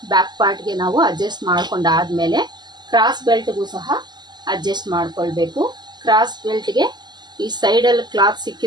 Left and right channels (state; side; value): late; left; 0.21 ms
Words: ಬ್ಯಾಕ್ ಪಾರ್ಟ್ಗೆ ನಾವು ಅಡ್ಜಸ್ಟ್ ಮಾಡ್ಕೊಂಡಾದ್ಮೇಲೆ ಕ್ರಾಸ್ ಬೆಲ್ಟ್ಗೂ ಸಹ ಅಡ್ಜಸ್ಟ್ ಮಾಡ್ಕೊಳ್ಬೇಕು. ಕ್ರಾಸ್ ಬೆಲ್ಟ್ಗೆ ಈ ಸೈಡಲ್ಲಿ ಕ್ಲಾತ್